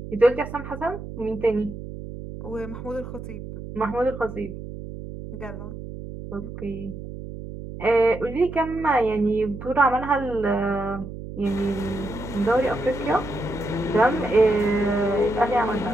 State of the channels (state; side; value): noise; right; hum, 10 dB below the sound